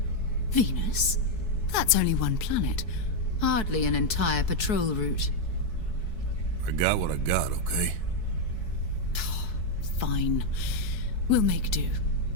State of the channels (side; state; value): right; late; 4.6 ms